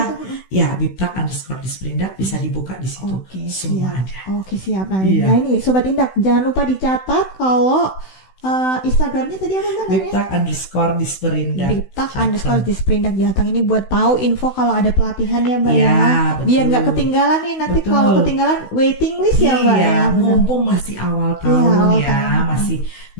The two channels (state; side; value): late; right; 16 ms